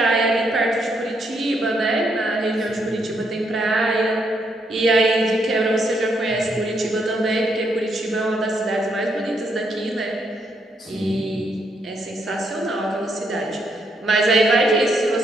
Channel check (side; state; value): both; normal; correlation 0.76